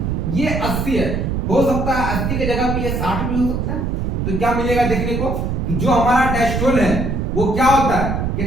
ये 80 है, हो सकता है 80 की जगह पे ये 60 भी हो सकता है। तो क्या मिलेगा देखने को कि जो हमारा डायस्टोल है वो क्या होता है,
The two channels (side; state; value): right; noise; rumble, 1 dB below the sound